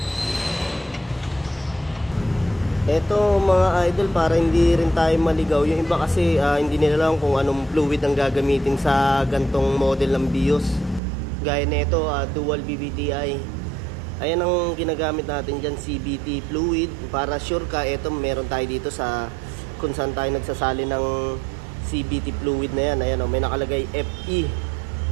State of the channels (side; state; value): left; drops out; at 11.0 s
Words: Ito mga idol, para hindi rin tayo maligaw, yung iba kasi hindi nila alam kung anong fluid ang gagamitin sa gantong model ng BIOS. Gaya nito, dual BBTI. Ayan ang ginagamit natin dyan, CVT fluid. Para sure ka, ito meron tayo dito sa kung saan tayo nagsasali ng CVT fluid na yan. Ayan, may nakalagay FE.